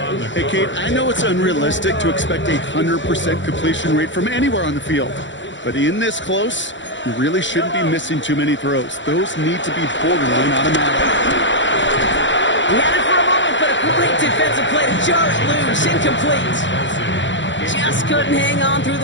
Hey, Kate, I know it's unrealistic to expect a 100% completion rate from anywhere on the field. But in this close, you really shouldn't be missing too many throws. Those need to be borderline automatic. He had it for a moment, but a great defensive play to jar it loose. Incomplete. Just couldn't hang on through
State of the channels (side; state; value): right; late; 0.54 ms